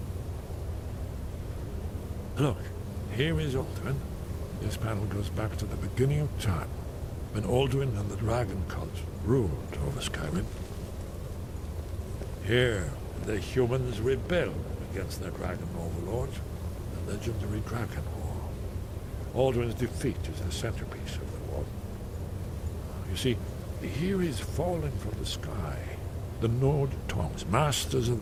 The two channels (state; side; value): identical; both; correlation 1.00